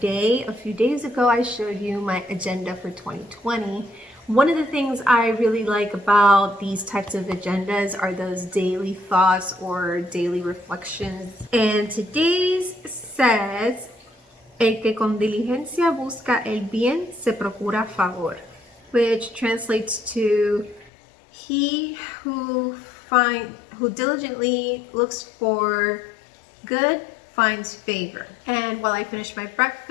A few days ago, I showed you my agenda for 2020. One of the things I really like about these types of agendas are those daily thoughts or daily reflections. And today's says, el que con diligencia busca el bien se procura favor, which translates to he who diligently looks for good finds favor. And while I finish my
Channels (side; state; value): right; drops out; at 20.9 s